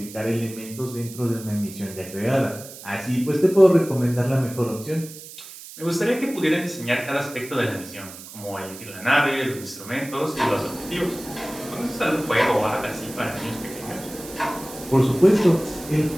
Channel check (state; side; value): noise; right; hiss, 15 dB below the sound